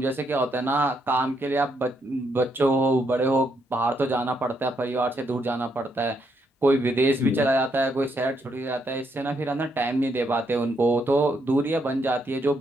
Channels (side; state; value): both; normal; correlation 0.76